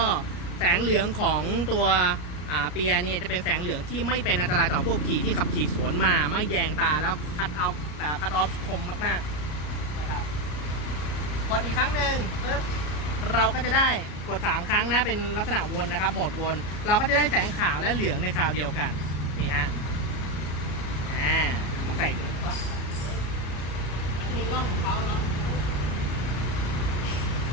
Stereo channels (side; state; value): right; late; 33 ms